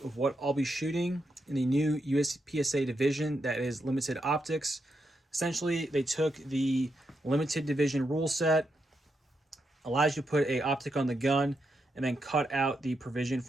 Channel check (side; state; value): both; normal; correlation 0.83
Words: of what I'll be shooting in the new USPSA division that is limited optics. Essentially, they took the limited division rule set, allows you to put a optic on the gun, and then cut out the provision